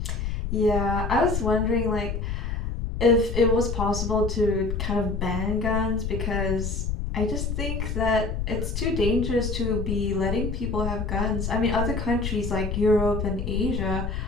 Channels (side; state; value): left; noise; rumble, 3 dB below the sound